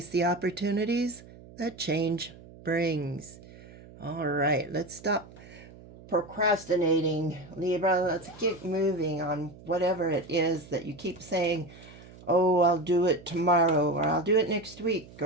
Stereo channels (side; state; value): right; noise; hum, 20 dB below the sound